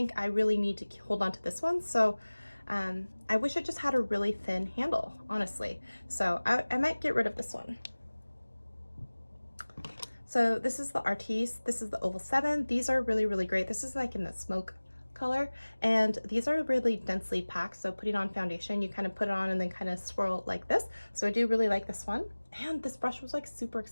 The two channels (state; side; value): inverted; both; correlation -1.00